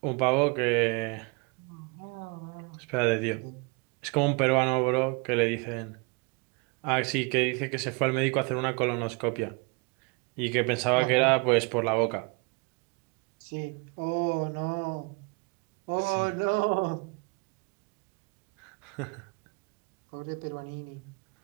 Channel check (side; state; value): left; quieter; 31.4 dB